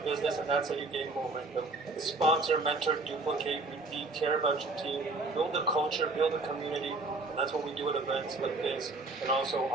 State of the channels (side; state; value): left; quieter; 3.3 dB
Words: business, and that's how you gain momentum. Sponsor, mentor, duplicate, repeat, care about your team, build a culture, build a community, and that's what we do at events like this, and also